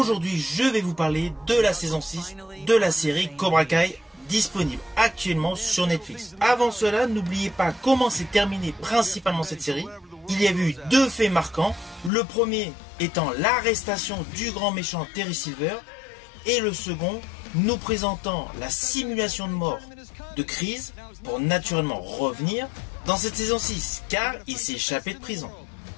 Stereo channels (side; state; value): right; drops out; at 12.1 s